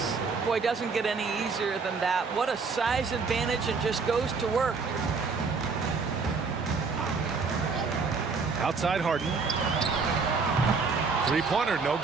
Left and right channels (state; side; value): quieter; left; 4.8 dB